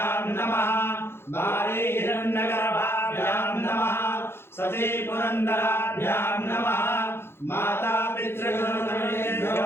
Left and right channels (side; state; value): right; late; 0.12 ms